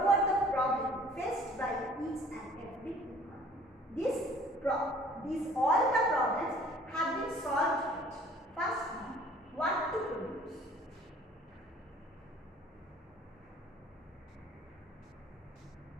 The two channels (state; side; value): normal; both; correlation 0.53